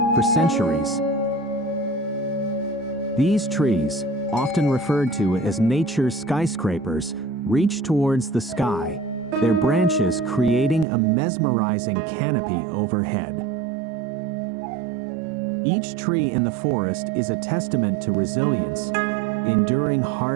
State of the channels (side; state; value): left; drops out; at 10.9 s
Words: for centuries. These trees, often referred to as nature's skyscrapers, reach towards the sky, their branches creating a mesmerizing canopy overhead. Each tree in the forest is a testament to resilience, enduring